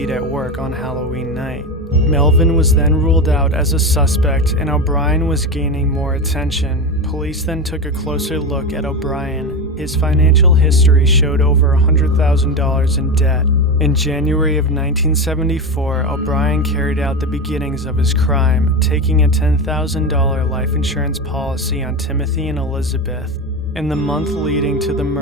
at work on Halloween night. Melvin was then ruled out as a suspect, and O'Brien was gaining more attention. Police then took a closer look at O'Brien. His financial history showed over $100,000 in debt. In January of 1974, O'Brien carried out the beginnings of his crime, taking a $10,000 life insurance policy on Timothy and Elizabeth. In the month leading to the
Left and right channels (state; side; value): normal; both; correlation 0.19